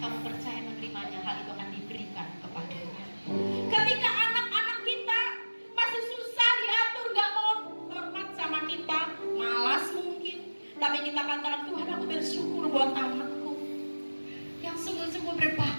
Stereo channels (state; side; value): inverted; both; correlation -1.00